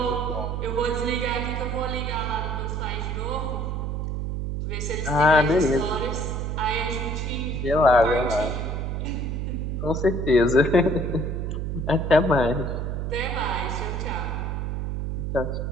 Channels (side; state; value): right; noise; hum, 2 dB below the sound